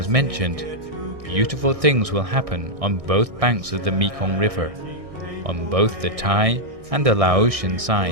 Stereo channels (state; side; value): late; left; 1.6 ms